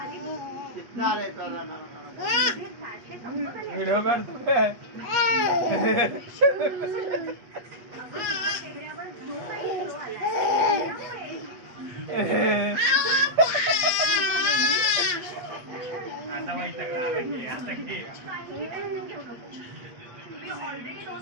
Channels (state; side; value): late; left; 8.4 ms